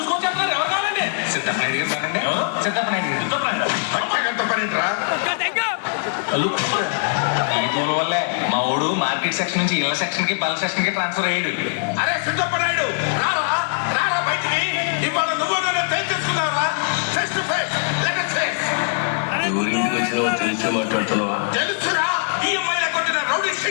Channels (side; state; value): right; silent; digital silence